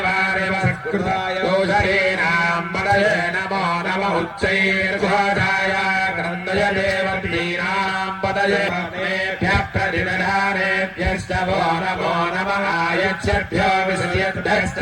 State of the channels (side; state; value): both; identical; correlation 1.00